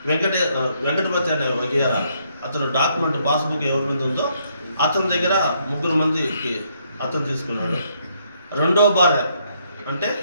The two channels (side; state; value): both; inverted; correlation -0.72